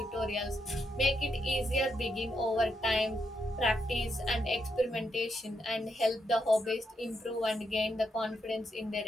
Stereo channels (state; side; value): normal; both; correlation 0.81